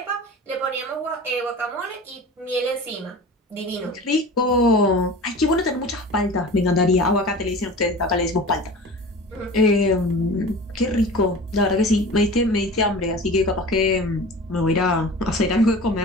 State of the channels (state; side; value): normal; both; correlation 0.37